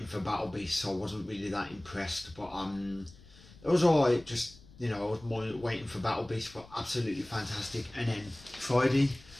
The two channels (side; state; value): left; noise; rumble, 22 dB below the sound